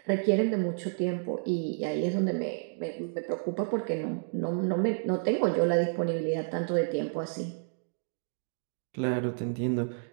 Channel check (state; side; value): silent; left; digital silence